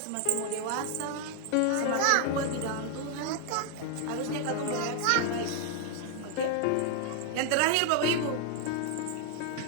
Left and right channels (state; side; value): different; both; correlation 0.00